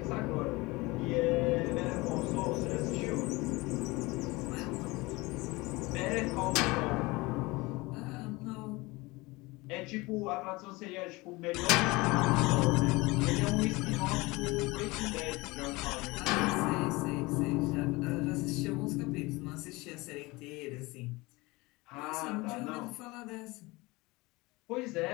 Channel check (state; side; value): quieter; right; 22.8 dB